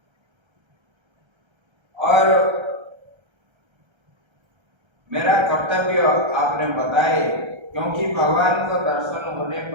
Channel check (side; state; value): left; late; 1.3 ms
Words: और मेरा कर्तव्य आपने बताए, क्योंकि भगवान का दर्शन होने